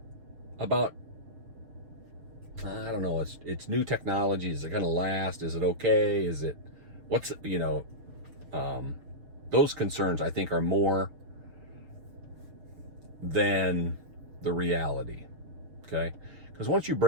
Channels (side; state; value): left; late; 6.6 ms